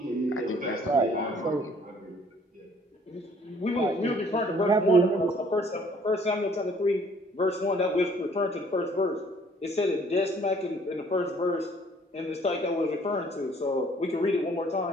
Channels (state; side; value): normal; both; correlation 0.59